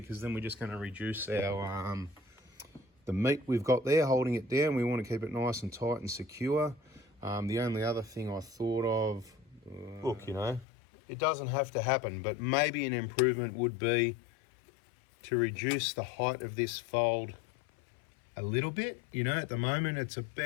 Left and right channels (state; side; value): drops out; right; at 10.7 s